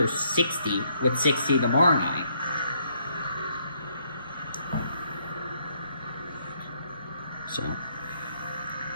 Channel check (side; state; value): both; inverted; correlation -0.71